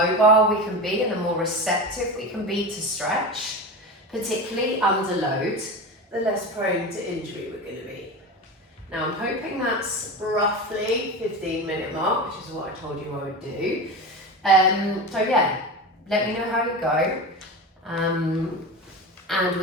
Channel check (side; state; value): both; normal; correlation 0.26